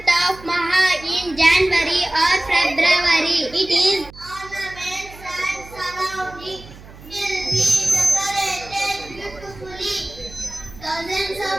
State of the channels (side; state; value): right; noise; hum, 19 dB below the sound